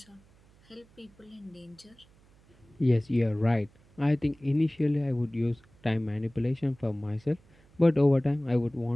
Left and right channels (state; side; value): noise; right; hum, 29 dB below the sound